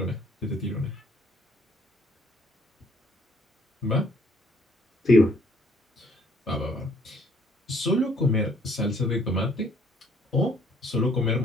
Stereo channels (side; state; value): both; normal; correlation 0.63